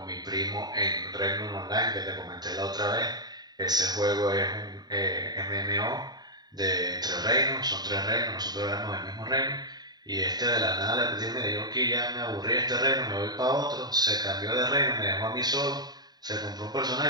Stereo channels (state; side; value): late; left; 0.20 ms